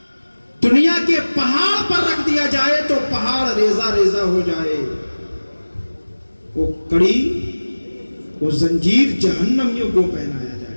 دنیا کے پہاڑ پر رکھ دیا جائے تو پہاڑ ریزہ ریزہ ہو جائے. وہ کڑی، وہ زنجیر جہنمیوں کو پہنایا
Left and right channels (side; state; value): both; inverted; correlation -1.00